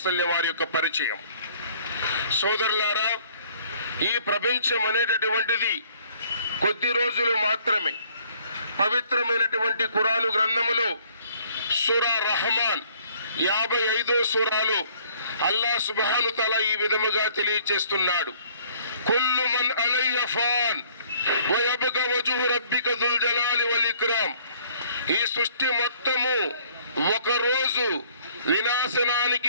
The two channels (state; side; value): inverted; both; correlation -0.59